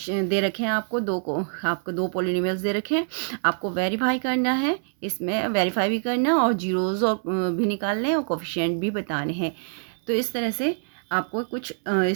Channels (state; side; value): silent; left; 62 dB below the other